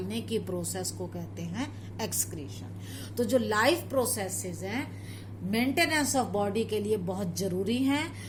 की प्रोसेस को कहते हैं एक्सक्रीशन। तो जो लाइफ प्रोसेसेस हैं मेंटेनेंस ऑफ बॉडी के लिए बहुत जरूरी हैं,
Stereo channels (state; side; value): identical; both; correlation 1.00